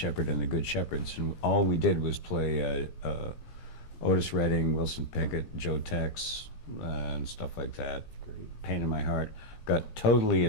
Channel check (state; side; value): late; right; 17 ms